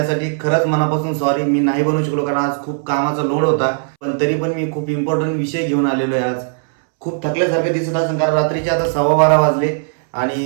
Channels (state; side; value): silent; left; 68 dB below the other